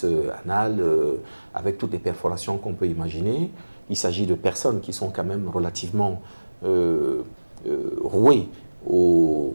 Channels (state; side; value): inverted; both; correlation -1.00